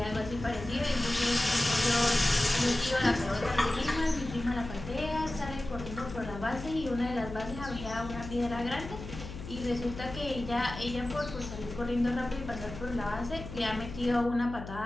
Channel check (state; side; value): noise; left; hum, 11 dB below the sound